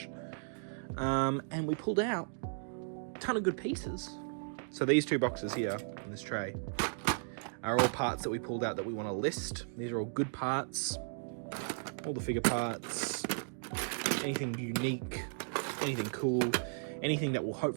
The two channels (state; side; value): silent; left; digital silence